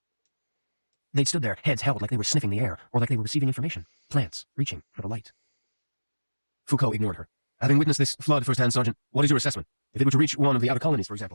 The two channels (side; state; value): both; inverted; correlation -1.00